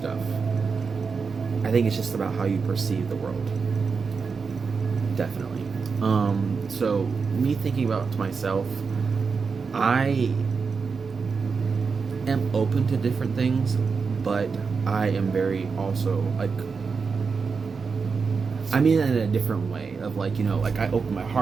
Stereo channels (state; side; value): quieter; left; 5.2 dB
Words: I think it's just about how you perceive the world. Definitely. So me thinking about to myself, I am open to different things, but I am very also like, I mean in a different way of like, you know, like I open my